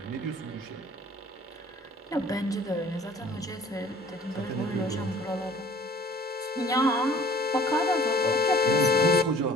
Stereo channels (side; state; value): both; normal; correlation 0.51